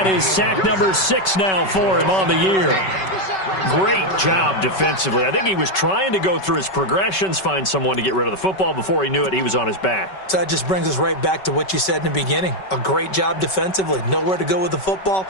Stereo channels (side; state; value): right; late; 5.3 ms